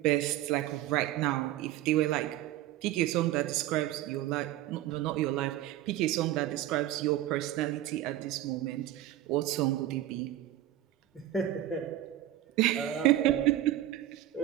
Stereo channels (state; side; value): quieter; left; 13.5 dB